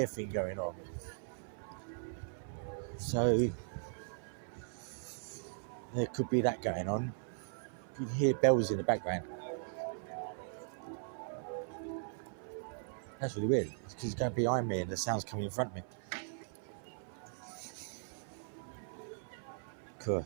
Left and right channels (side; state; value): left; silent; 52 dB below the other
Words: thing going on. So there could be that going on. You can hear bells in the background. That's really weird. It's because it's going behind me and the sound's coming in front of me. Cool.